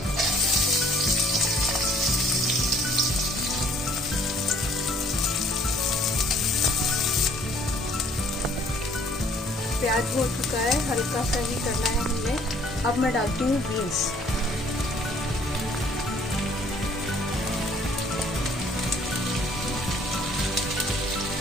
प्याज हो चुका है, हल्का सा ही करना है हमने। अब मैं डालती हूँ बीन्स।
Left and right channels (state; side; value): normal; both; correlation 0.58